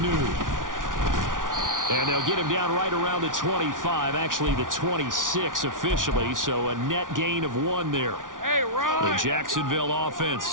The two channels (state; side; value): late; left; 0.88 ms